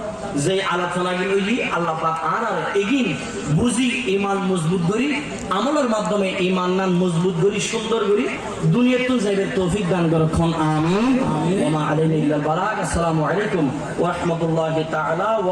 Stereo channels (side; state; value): both; identical; correlation 1.00